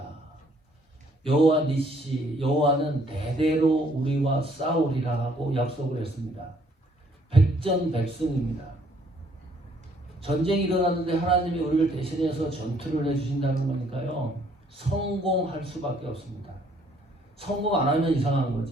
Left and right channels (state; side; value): normal; both; correlation 0.64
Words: 여호와 니시, 여호와는 대대로 우리와 싸우리라 하고 약속을 했습니다. 백전백승입니다. 전쟁이 일어났는데 하나님이 우리를 대신해서 전투를 해주신다는 거니까요. 성공할 수밖에 없습니다. 성공 안 하면 이상한